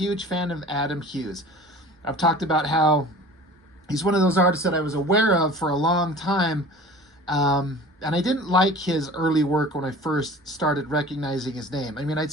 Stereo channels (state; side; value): normal; both; correlation 0.42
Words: fan of Adam Hughes. I've talked about how he's one of those artists that I was aware of for a long time. And I didn't like his early work when I first started recognizing his name. I mean, I'd